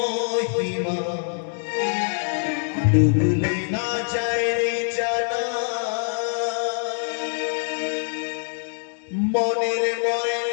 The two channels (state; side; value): silent; right; 62 dB below the other